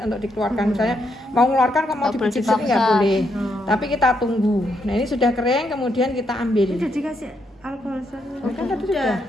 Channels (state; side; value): normal; both; correlation 0.78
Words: untuk dikeluarkan. Misalnya mau mengeluarkan kok mau dipijit sini nggak boleh. Tapi kita tunggu. Nah ini sudah kering, kemudian kita ambil. Udah dikasih alkohol Kan tadi sudah.